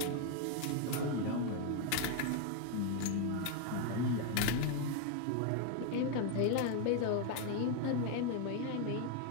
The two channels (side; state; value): both; different; correlation 0.01